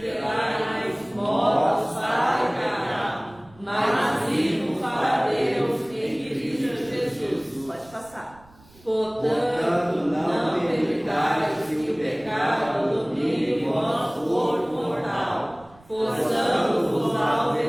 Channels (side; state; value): right; noise; rumble, 26 dB below the sound